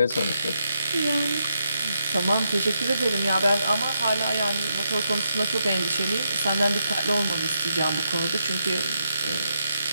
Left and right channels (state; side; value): inverted; both; correlation -0.82